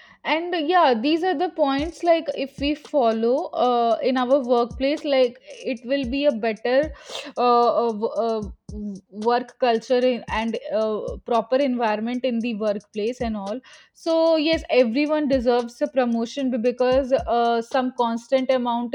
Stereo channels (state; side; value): identical; both; correlation 1.00